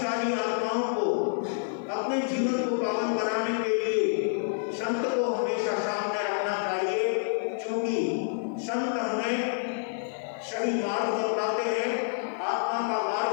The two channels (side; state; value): right; silent; digital silence